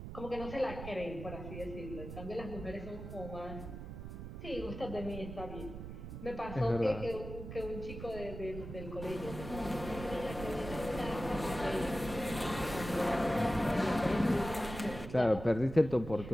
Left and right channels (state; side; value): noise; right; rumble, 9 dB below the sound